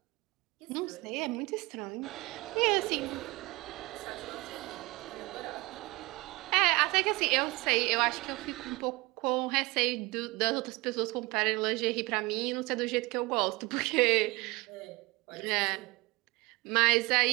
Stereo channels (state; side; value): quieter; left; 23.2 dB